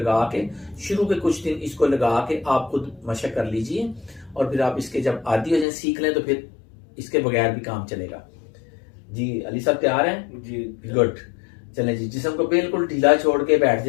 के शुरू के कुछ दिन इसको लगा के आप खुद मशक कर लीजिए। और फिर आप इसके जब आदी हो जाए, सीख लें, तो फिर इसके बगैर भी काम चलेगा। जी अली साहब तैयार हैं? जी गुड। चलें जी, जिस्म को बिल्कुल ढीला छोड़ के बैठ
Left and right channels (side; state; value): right; drops out; at 5.7 s